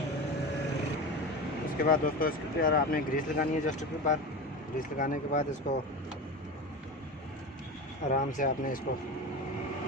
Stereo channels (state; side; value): normal; both; correlation 0.26